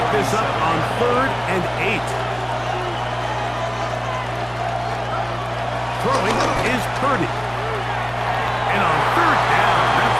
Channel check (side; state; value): right; noise; rumble, 27 dB below the sound